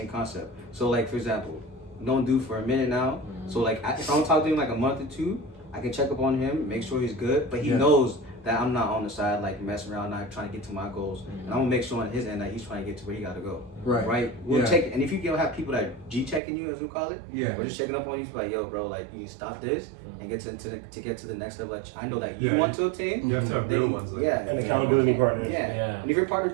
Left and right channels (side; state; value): left; drops out; at 16.4 s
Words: concept. So like for example, known dude for a minute now. So like if I don't talk to him like a month or two, I can check up on him, make sure he's good, but he knows that I'm not on the side like messing around, not trying to get to my goals, and I'm gonna make sure on his end that he's trying to get to where he gotta go. Right. We'll check, and if you don't have people that G checking you, as we call it, we're just checking up on you, like, yo, bro, like you need to stop this and get to get to the next level. That I know that you want to attain. You have to have real ones. Like And accountability partners. Yeah. And if your partner